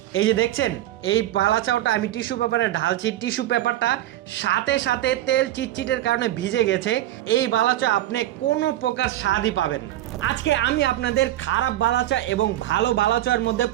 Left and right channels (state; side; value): quieter; left; 13.9 dB